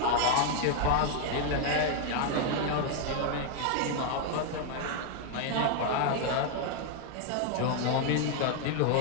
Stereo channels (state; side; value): different; both; correlation 0.00